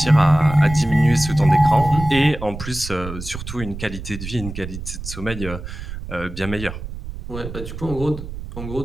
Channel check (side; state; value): right; noise; rumble, 10 dB below the sound